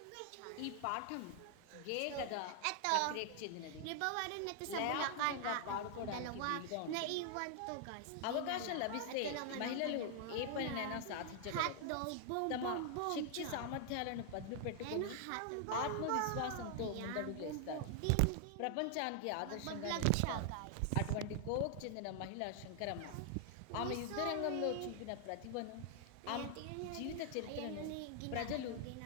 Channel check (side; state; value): both; different; correlation 0.00